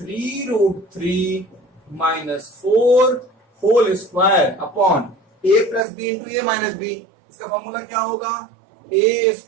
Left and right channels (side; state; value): left; drops out; at 5.8 s